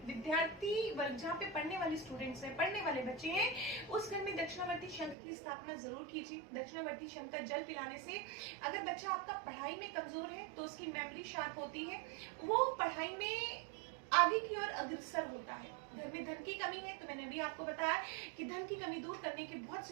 विद्यार्थी वर्ग जहाँ पे पढ़ने वाले स्टूडेंट्स हैं, पढ़ने वाले बच्चे हैं, उस घर में दक्षिणावर्ती शंख की स्थापना जरूर कीजिए। दक्षिणावर्ती शंख का जल पिलाने से अगर बच्चा आपका पढ़ाई में कमजोर है तो उसकी मेमोरी शार्प होती है, वो पढ़ाई में आगे की ओर अग्रसर होता है। घर में धन की कमी है तो मैंने अभी आपको बताया कि धन की कमी दूर करने के बहुत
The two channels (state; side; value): drops out; left; at 5.2 s